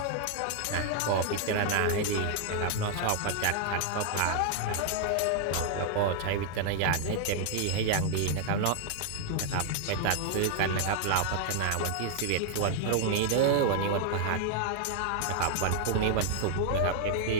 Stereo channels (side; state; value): both; different; correlation 0.00